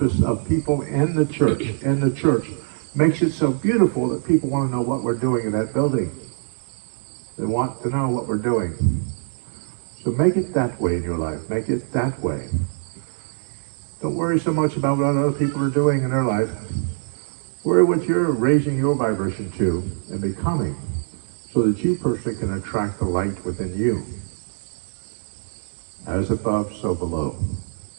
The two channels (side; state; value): left; silent; digital silence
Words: of people in the church makes it so beautiful that people want to know what we're doing in that building. They want to know what we're doing. So make it that way in your life. Make it that way. Don't worry so much about what other people are doing in their life. Worry what you're raising your vibration to and becoming, so that you personally can attract the light within you. As above, so below.